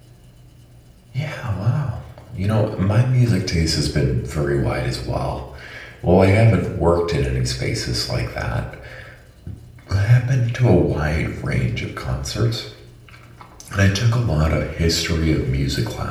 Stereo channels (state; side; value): identical; both; correlation 1.00